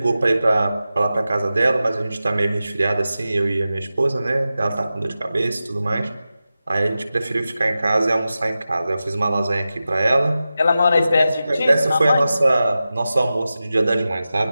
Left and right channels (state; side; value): inverted; both; correlation -0.93